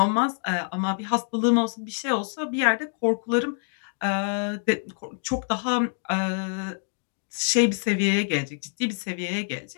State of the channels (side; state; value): right; silent; 59 dB below the other